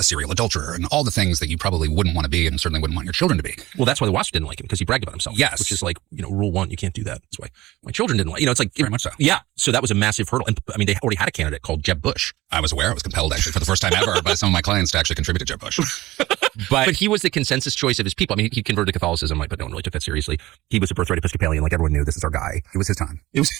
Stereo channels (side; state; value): left; quieter; 17.9 dB